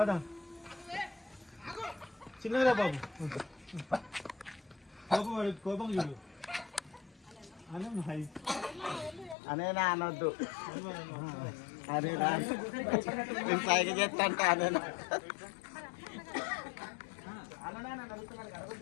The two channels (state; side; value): drops out; right; at 9.3 s